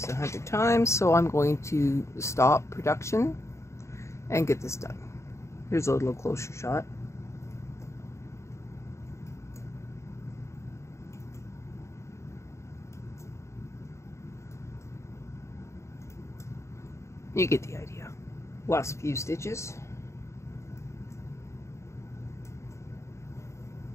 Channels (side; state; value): right; late; 0.14 ms